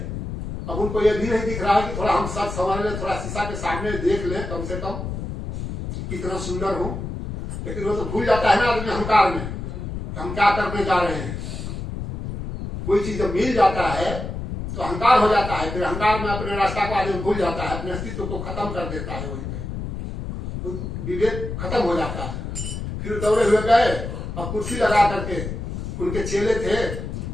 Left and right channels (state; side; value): noise; left; rumble, 6 dB below the sound